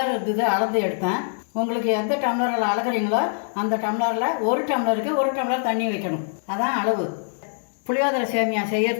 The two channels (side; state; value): right; silent; digital silence